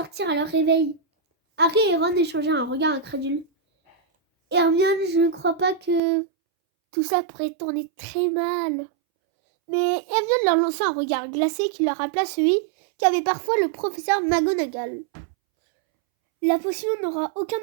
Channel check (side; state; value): left; drops out; at 6.0 s